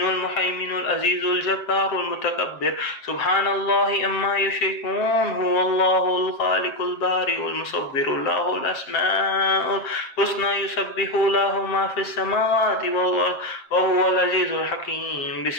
المهيمن العزيز الجبار المتكبر سبحان الله أما يشركون هو الله الخالق البارئ المصور له الأسماء الحسنى يسبح له ما في السماوات وهو العزيز الحكيم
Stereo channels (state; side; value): late; right; 7.4 ms